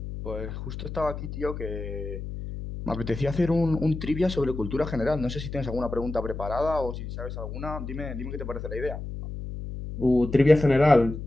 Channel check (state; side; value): noise; left; hum, 8 dB below the sound